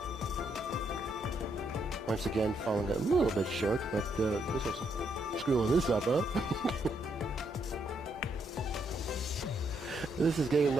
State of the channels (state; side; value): normal; both; correlation 0.76